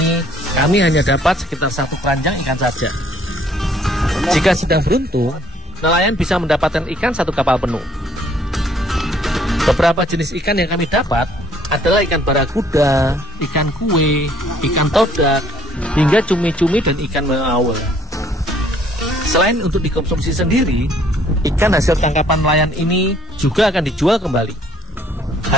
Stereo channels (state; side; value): normal; both; correlation 0.60